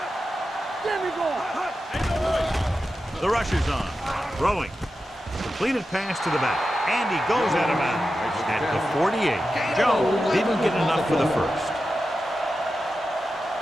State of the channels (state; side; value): normal; both; correlation 0.91